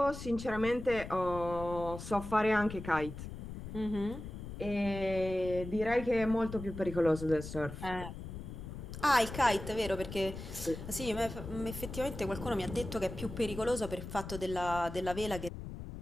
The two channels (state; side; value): noise; left; rumble, 9 dB below the sound